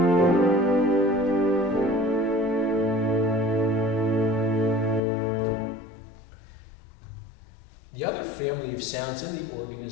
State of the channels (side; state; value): right; drops out; at 5.0 s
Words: The other family of sounds in the organ